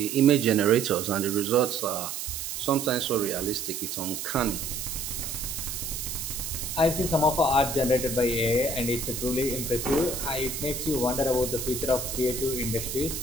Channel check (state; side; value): noise; right; hiss, 5 dB below the sound